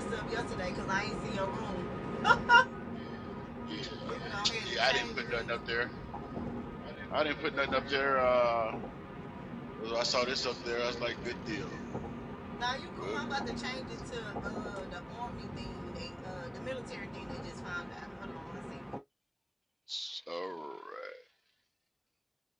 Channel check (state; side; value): identical; both; correlation 1.00